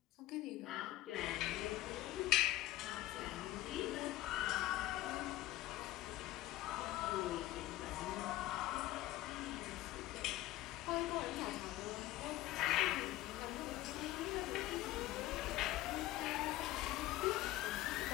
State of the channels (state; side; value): quieter; right; 16.2 dB